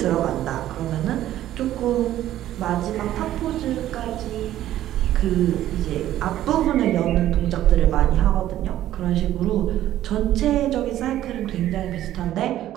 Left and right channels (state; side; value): quieter; left; 13.0 dB